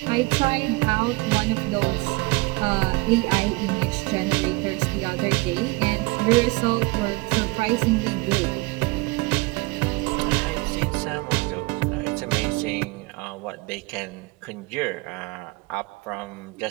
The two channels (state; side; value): quieter; left; 25.0 dB